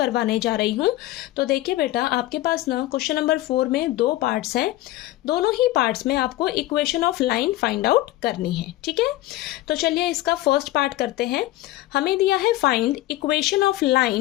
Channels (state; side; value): quieter; right; 16.4 dB